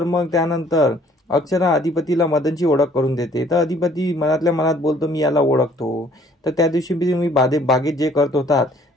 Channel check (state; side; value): normal; both; correlation 0.59